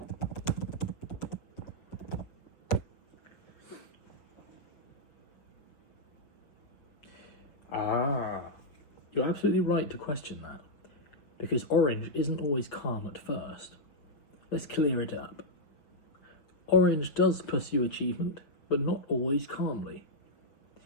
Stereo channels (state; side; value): late; right; 6.3 ms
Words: You're absolutely right to question that, because orange isn't always calm at first. Let's clear it up. Orange does pursue achievement, but not always calmly.